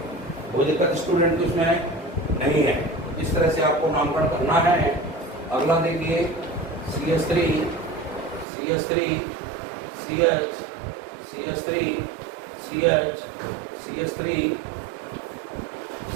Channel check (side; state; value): left; drops out; at 8.5 s